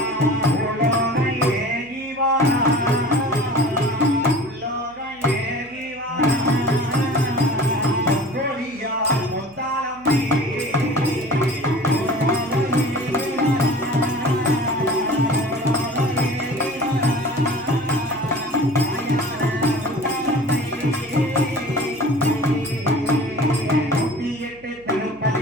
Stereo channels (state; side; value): noise; right; hum, 26 dB below the sound